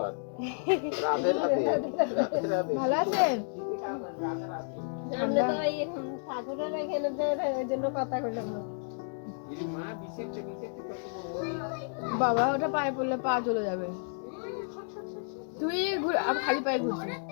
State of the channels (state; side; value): silent; right; digital silence